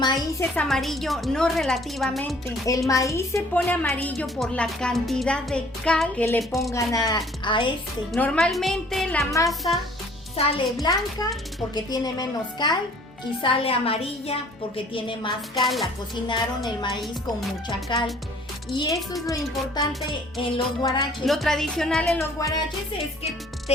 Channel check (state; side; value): normal; both; correlation 0.55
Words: es amarillo, no relativamente. El maíz se pone amarillo por la cantidad de cal que le pongan a este. Normalmente la masa sale blanca porque tiene menos cal y sale amarilla porque tiene más cal. La cocinaron el maíz con mucha cal. Y eso es lo importante en los guaraches. Lo tradicional en los guaraches es que